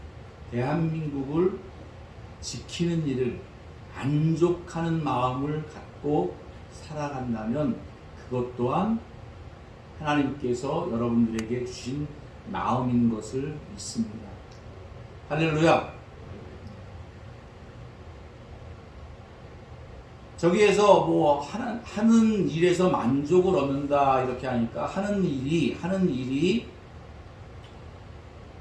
대한민국을 지키는 일을 만족하는 마음을 갖고 살아간다면 그것 또한 하나님께서 여러분들에게 주신 마음인 것을 믿습니다. 할렐루야. 저기에서 뭐 하는 일에서 만족을 얻는다 이렇게 하니까 하는 일이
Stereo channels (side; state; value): both; identical; correlation 1.00